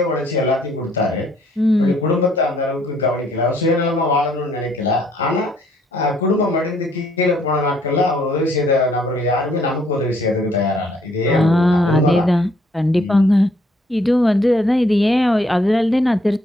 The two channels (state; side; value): normal; both; correlation 0.66